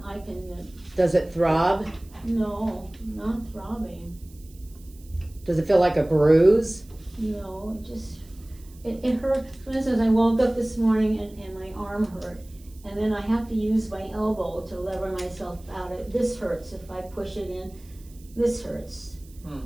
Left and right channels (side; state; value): right; noise; hiss, 26 dB below the sound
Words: Does it throb? no, not throbbing. Does it feel like a bruise? No, it hurt. For instance, I woke up this morning and my arm hurt. And then I have to use my elbow to lever myself out. This hurts. If I push it in, this hurts.